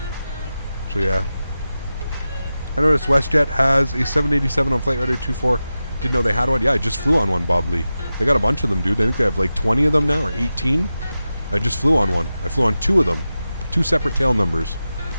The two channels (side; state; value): both; inverted; correlation -0.93